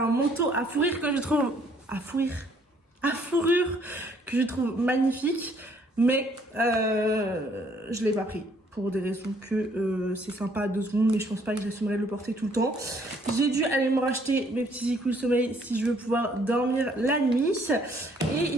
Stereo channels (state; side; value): normal; both; correlation 0.64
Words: un manteau à fourrure que je trouve... à fourrure que je trouve magnifique, mais je l'ai pas pris. Pour des raisons que c'est sympa à 2 secondes, mais je pense pas que j'assumerai de le porter tout le temps. J'ai dû aller me racheter mes petits écoules sommeil si je veux pouvoir dormir la nuit. Et